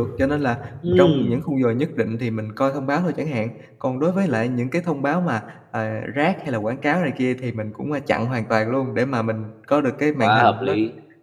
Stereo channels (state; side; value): identical; both; correlation 1.00